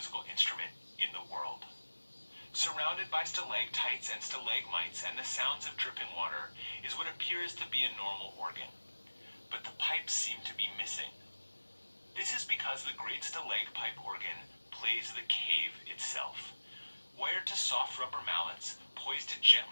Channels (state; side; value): inverted; both; correlation -1.00